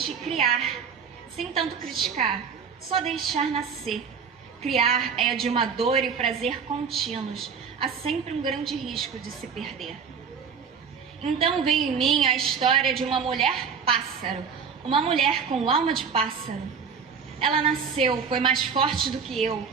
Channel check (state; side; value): quieter; left; 6.2 dB